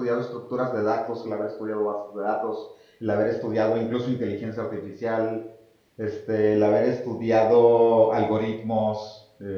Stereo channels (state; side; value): identical; both; correlation 1.00